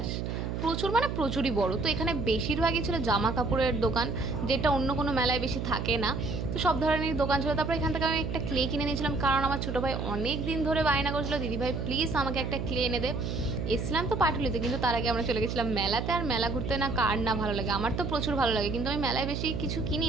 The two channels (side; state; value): right; noise; hum, 3 dB below the sound